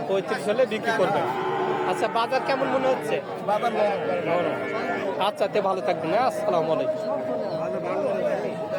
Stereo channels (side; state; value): both; identical; correlation 1.00